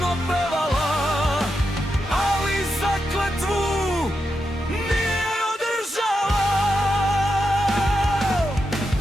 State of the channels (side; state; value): both; normal; correlation 0.86